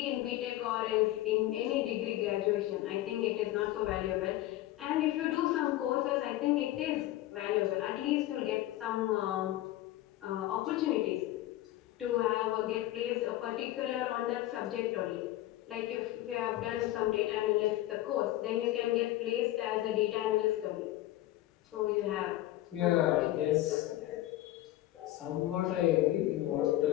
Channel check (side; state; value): right; quieter; 15.3 dB